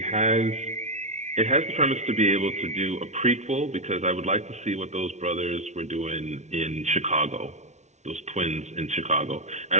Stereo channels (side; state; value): left; late; 0.33 ms